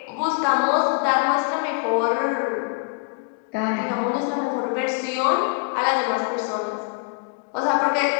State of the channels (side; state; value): right; quieter; 37.1 dB